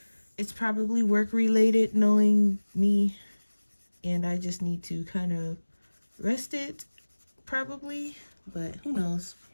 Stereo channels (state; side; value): inverted; both; correlation -1.00